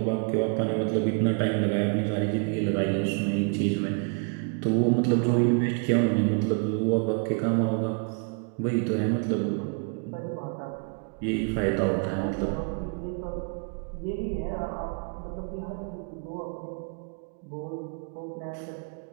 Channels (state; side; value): quieter; left; 39.8 dB